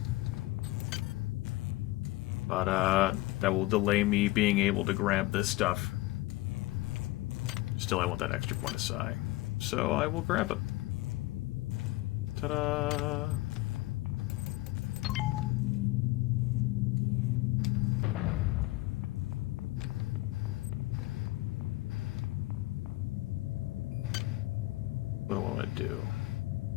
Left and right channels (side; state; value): right; quieter; 19.5 dB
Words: But, that will delay me being able to grab this stuff. Still, I want that extra point of psi. So, I will grab it. Ta-da! What do I want to do?